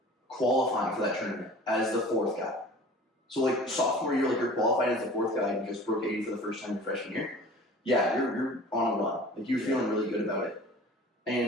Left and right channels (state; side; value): normal; both; correlation 0.43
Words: qualifying for that tournament as the 4th guy. So like sophomore year, like you're qualified as the fourth guy and just broke 80 for the first time your freshman year. Yeah, you're on a run. Like you're feeling really good about it.